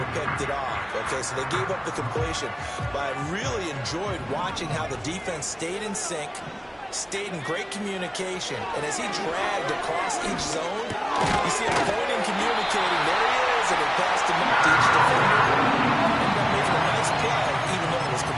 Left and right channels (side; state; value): both; identical; correlation 1.00